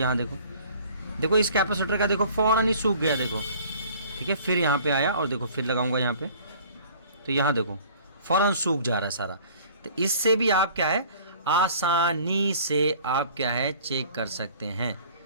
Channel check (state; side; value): inverted; both; correlation -0.50